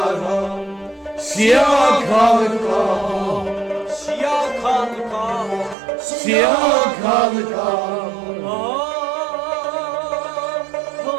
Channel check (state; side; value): drops out; left; at 5.8 s